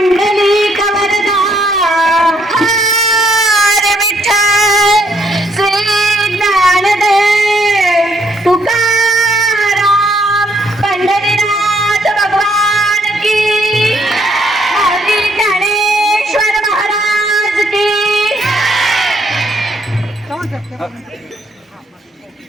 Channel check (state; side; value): normal; both; correlation 0.70